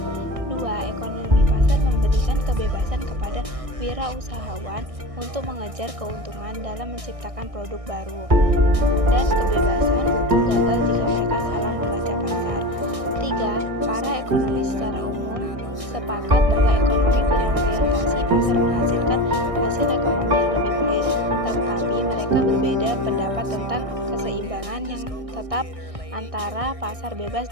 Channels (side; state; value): left; late; 1.6 ms